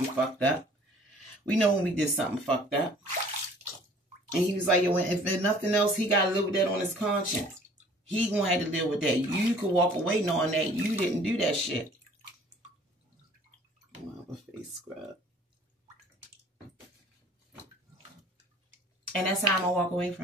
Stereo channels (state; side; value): normal; both; correlation 0.52